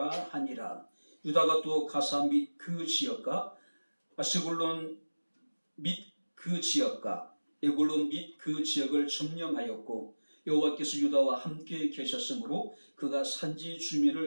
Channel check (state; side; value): inverted; both; correlation -1.00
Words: 하니라. 유다가 또 가사 및 그 지역과 아스골론 및 그 지역과 에골론 및 그 지역을 점령하였고 여호와께서 유다와 함께 계셨으므로 그가 산지